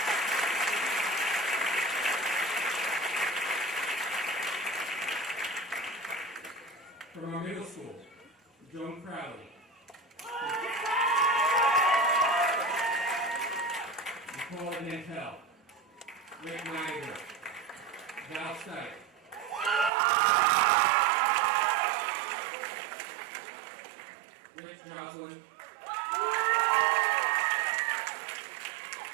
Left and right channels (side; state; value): left; drops out; at 19.9 s